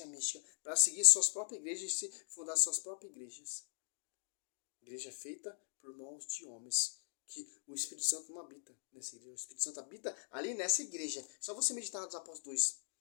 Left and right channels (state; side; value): silent; right; digital silence